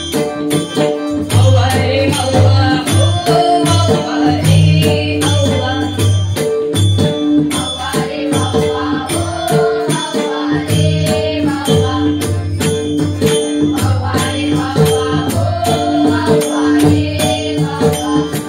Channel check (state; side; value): identical; both; correlation 1.00